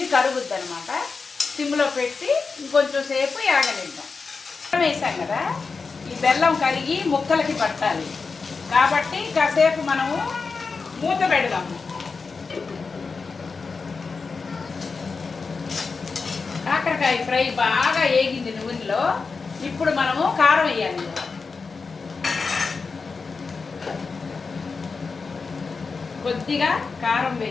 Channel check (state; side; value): quieter; right; 4.7 dB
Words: కరుగుద్ది అనమాట. సిమ్లో పెట్టి ఇంకొంచెం సేపు యాగనిద్దాం. బెల్లం వేసాం కదా, ఈ బెల్లం కరిగి ముక్కలకి పట్టాలి. కాబట్టి కాసేపు మనము మూత పెడదాము. కాకరకాయ ఫ్రై బాగా వేగింది నూనెలో. ఇప్పుడు మనము కారం వేయాలి. కొద్దిగా కారం